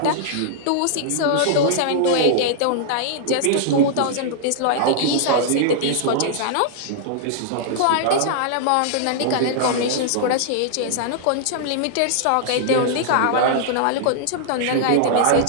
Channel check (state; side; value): different; both; correlation -0.01